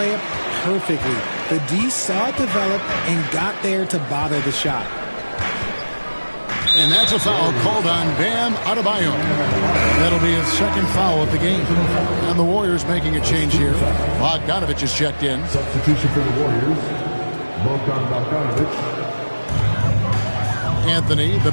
perfectly. The D saw it develop and got there to bother the shot. And that's a foul called on Bam Adebayo. That'll be his 2nd foul of the game. And the Warriors making a change here. Bogdanovich is checked in. Substitution for the Warriors. Bogdanovich. Anthony, the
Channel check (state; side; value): inverted; both; correlation -1.00